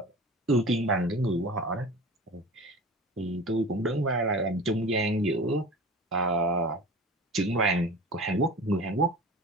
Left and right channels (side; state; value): both; normal; correlation 0.36